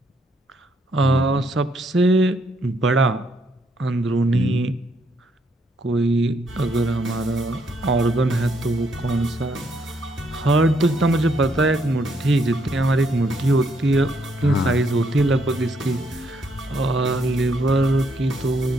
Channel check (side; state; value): both; normal; correlation 0.73